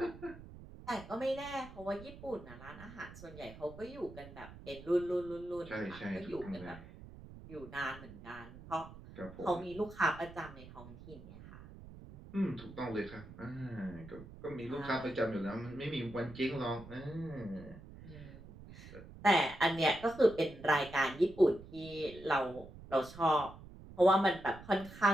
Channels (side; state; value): right; noise; rumble, 16 dB below the sound